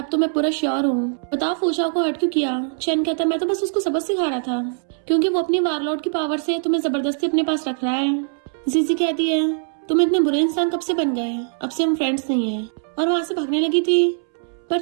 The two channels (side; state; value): left; silent; 64 dB below the other